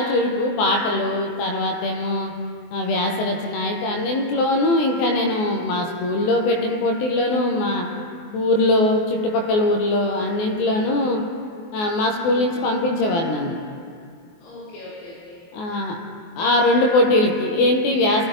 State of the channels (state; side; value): late; right; 24 ms